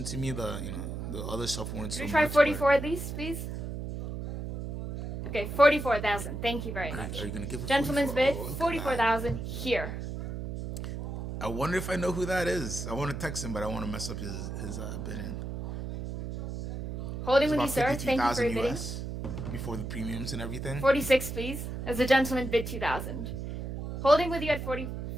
to me. The other stuff weren't so Should we try much. 44 at least, please? Okay, 44,000. Thank you very much. Are you gonna give a Gentleman's 44? bid, Oh, look at that. 44,000 here. I wonder if I know who that is. I want to text him, but I want to mess up his bidding. Holding It's with you, about sir. Thank you for 53,000 your bidding. US before the premiums and everything. 46, please. As the gentleman bid 2,000. Holding with you at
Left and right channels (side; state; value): right; noise; hum, 6 dB below the sound